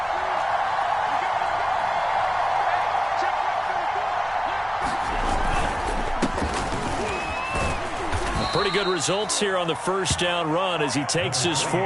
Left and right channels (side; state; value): both; identical; correlation 1.00